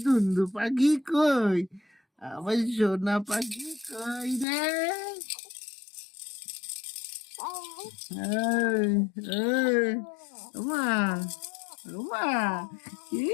দুন্দু পাখি কই, আমার সোনা পাখি কই রে? মা মা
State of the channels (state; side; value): drops out; right; at 4.5 s